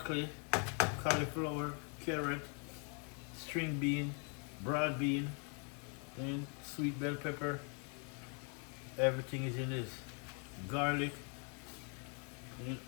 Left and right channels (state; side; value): quieter; right; 38.5 dB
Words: cauliflower, carrot, string bean, broad bean, and sweet bell pepper. Everything is in this. Garlic, and